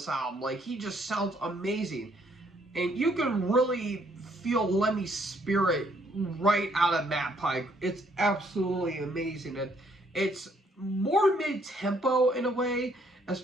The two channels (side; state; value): both; normal; correlation 0.67